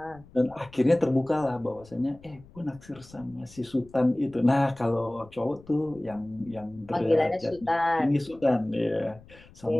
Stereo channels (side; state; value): left; noise; rumble, 23 dB below the sound